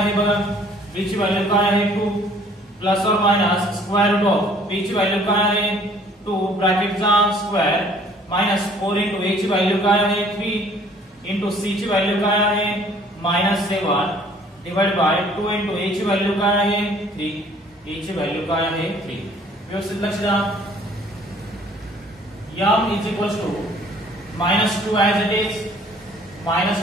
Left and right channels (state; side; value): normal; both; correlation 0.56